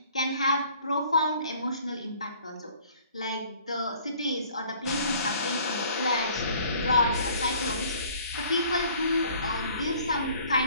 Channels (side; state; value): both; inverted; correlation -0.55